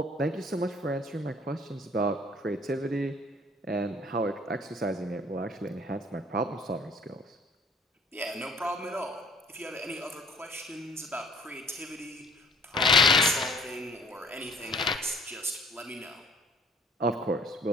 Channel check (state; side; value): normal; both; correlation 0.54